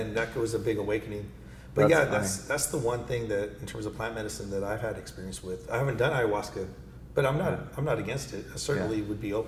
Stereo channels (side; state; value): both; identical; correlation 1.00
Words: that was a big awakening. But that's the one thing that, in terms of plant medicine, that I've had experience with. I haven't done ayahuasca, but I'm not against it. I certainly would be